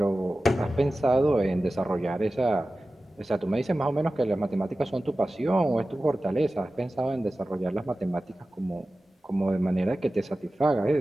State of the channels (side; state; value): both; normal; correlation 0.95